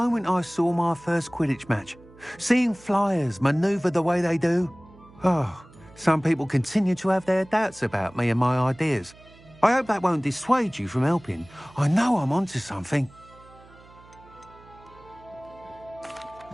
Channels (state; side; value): noise; right; hum, 24 dB below the sound